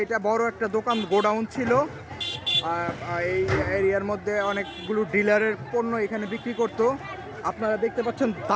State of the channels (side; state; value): both; identical; correlation 1.00